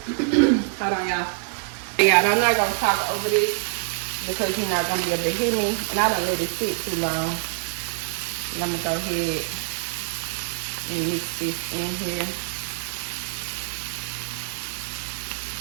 Hold on, y'all. Yeah, I'm not gonna talk over this because you're not gonna be able to hear me, and I don't let it sit too long. And I'm gonna go ahead and mix this in here.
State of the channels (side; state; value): left; silent; 58 dB below the other